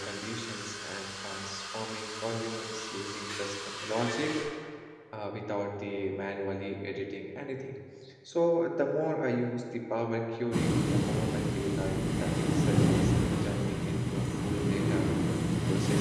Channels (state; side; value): identical; both; correlation 1.00